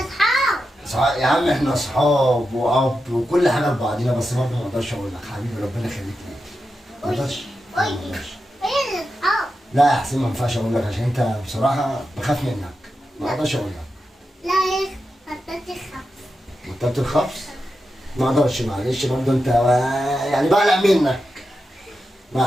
يا عم احنا اصحاب واب وكل حاجه لبعضينا، بس برضه ما اقدرش اقول لك. حبيبي ربنا يخليك ليا. ما اقدرش. لا يا حسين ما ينفعش اقول لك، عشان انت بصراحه بخاف منك. ما اقدرش اقول لك. لا يا بطلت الخبز. بطلت الخبز؟ ما اقدرش، معلش برضه انت يعني بقلق منك.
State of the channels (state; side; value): normal; both; correlation 0.89